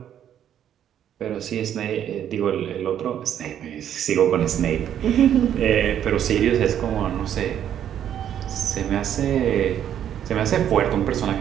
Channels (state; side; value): quieter; left; 10.0 dB